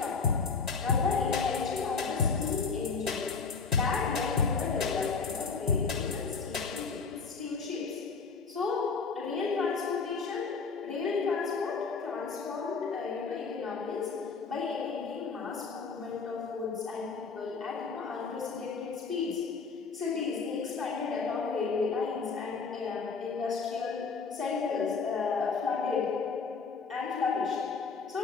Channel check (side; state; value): right; quieter; 5.0 dB